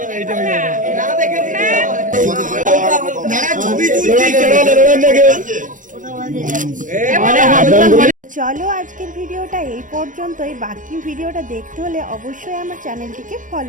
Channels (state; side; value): late; left; 0.38 ms